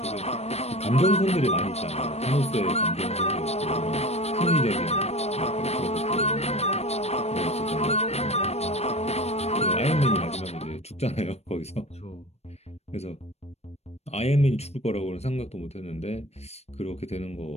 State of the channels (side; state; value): right; late; 0.31 ms